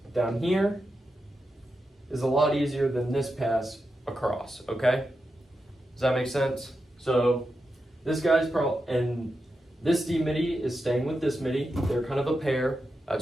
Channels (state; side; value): normal; both; correlation 0.88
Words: down here is a lot easier than this pass across, okay? Does that make sense? So this guy's and this D midi is staying with this midi. They're kind of a pair.